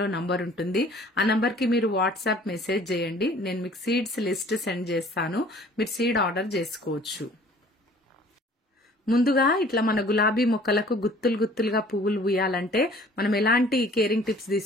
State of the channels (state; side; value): normal; both; correlation 0.52